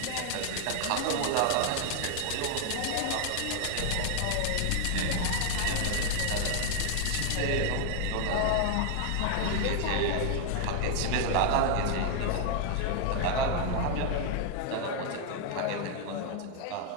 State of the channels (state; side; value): different; both; correlation 0.00